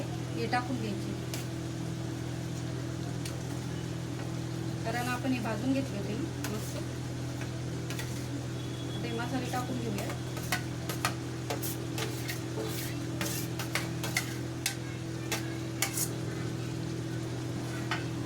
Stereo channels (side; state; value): both; identical; correlation 1.00